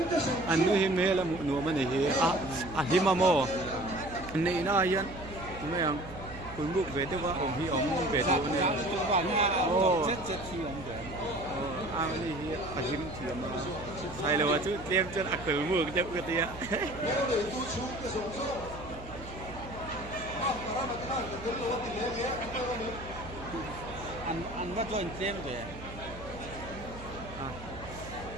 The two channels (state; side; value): noise; right; hum, 14 dB below the sound